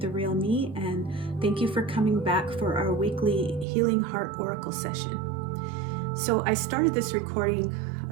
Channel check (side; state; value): left; drops out; at 3.7 s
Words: real me, and thank you for coming back for our weekly Healing Heart Oracle session. So I started this recording